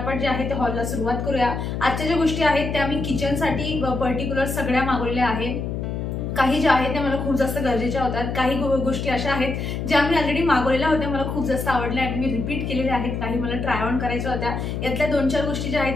जे आहे ते हॉलला सुरुवात करूया. आजच्या ज्या गोष्टी आहेत त्या मी किचनसाठी पर्टिक्युलर सगळ्या मागवलेल्या आहेत. काही ज्या आहेत त्या मला खूप जास्त गरजेच्या होत्या. काही गोष्टी अशा आहेत ज्या मी ऑलरेडी मागवलेल्या होत्या, मला खूप जास्त आवडल्या आणि मी रिपीट केलेल्या आहेत. काही मला ट्राय ऑन करायच्या होत्या. यातल्या 2-4 गोष्टी ज्या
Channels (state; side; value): noise; left; hum, 3 dB below the sound